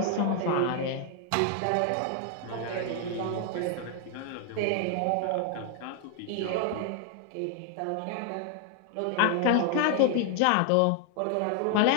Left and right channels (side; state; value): both; different; correlation 0.00